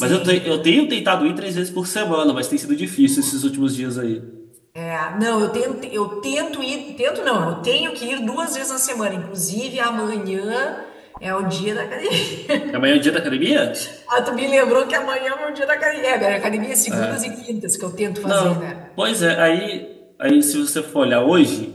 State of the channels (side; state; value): both; identical; correlation 1.00